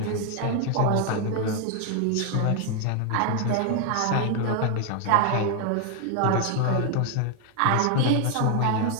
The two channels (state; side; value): different; both; correlation 0.00